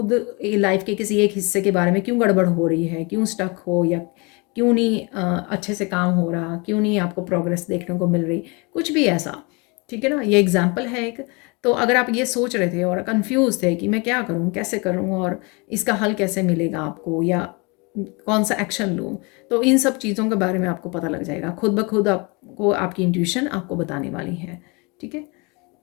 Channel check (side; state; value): right; quieter; 29.2 dB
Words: लाइफ के किसी एक हिस्से के बारे में क्यों गड़बड़ हो रही है, क्यों स्टक हो, या क्यों नहीं अच्छे से काम हो रहा, क्यों नहीं आपको प्रोग्रेस देखने को मिल रही, कुछ भी ऐसा, ठीक है ना, ये एग्जाम्पल है एक। तो अगर आप ये सोच रहे थे और कंफ्यूज थे कि मैं क्या करूँ, कैसे करूँ और इसका हल कैसे मिलेगा आपको, या कौन सा एक्शन लूँ, तो इन सब चीज़ों के बारे में आपको पता लग जाएगा खुद ब खुद। आपको आपकी इंट्यूशन आपको बताने वाली है। ठीक है,